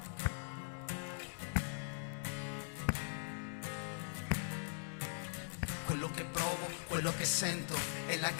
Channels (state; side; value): silent; right; digital silence